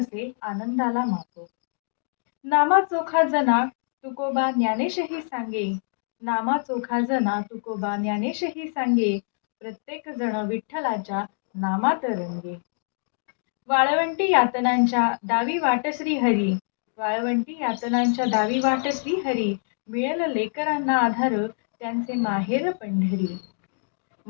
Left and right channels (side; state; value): right; silent; digital silence